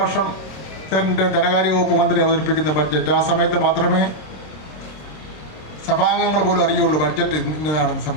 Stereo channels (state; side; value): late; right; 26 ms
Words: ധനകാര്യ വകുപ്പ് മന്ത്രി അവതരിപ്പിക്കുന്ന ബഡ്ജറ്റ്. ആ സമയത്ത് മാത്രമേ സഭാംഗങ്ങൾ പോലും അറിയുള്ളൂ ബഡ്ജറ്റ് ഇന്നതാണെന്ന്